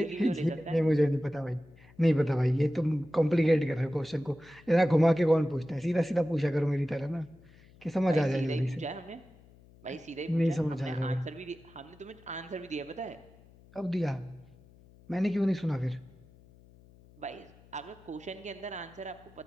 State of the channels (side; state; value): left; noise; hum, 25 dB below the sound